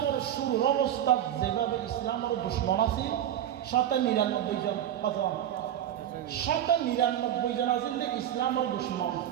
শুরু অবস্থা যেভাবে ইসলামের দুশ্মন আছে 99 জন, 99 জন আছেন যে ইসলামের দুশ্মন,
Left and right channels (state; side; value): quieter; left; 11.0 dB